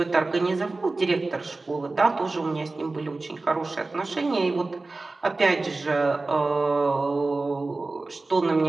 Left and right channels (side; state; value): left; quieter; 3.3 dB